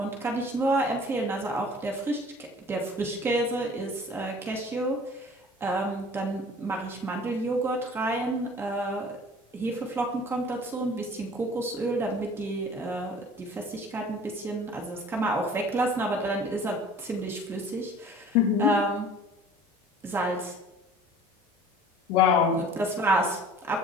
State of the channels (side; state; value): both; normal; correlation 0.47